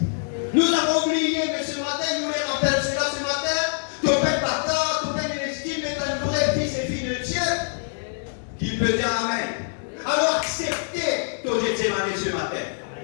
Nous avons oublié, mais ce matin, nous les rappelons cela ce matin. Ton père bâtard, ton père l'estime est un vrai fils et fille de Dieu qui peut dire Amen. Alors acceptez ton témoignage ce matin.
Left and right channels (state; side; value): silent; right; digital silence